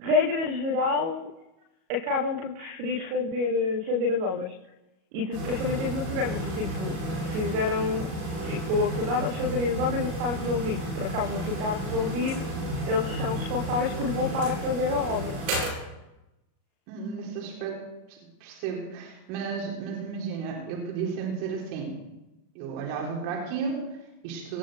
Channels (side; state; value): left; late; 37 ms